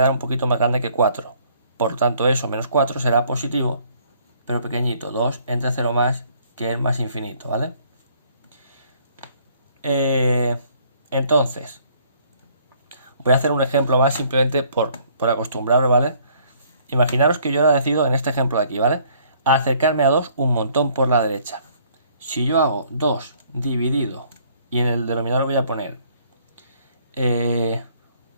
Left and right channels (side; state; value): both; inverted; correlation -0.62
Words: un poquito más grande que 4. Por tanto eso, menos 4 será positivo, pero pequeñito, 2 entre 0 más, que es más infinito, ¿vale? Entonces, voy a hacer un ejemplo más simplemente por acostumbraros, ¿vale? Imaginaros que yo ahora decido, en este ejemplo de aquí, ¿vale? A acercarme a 2 un montón por la derecha. Si yo hago 2 dividido y en el denominador voy a poner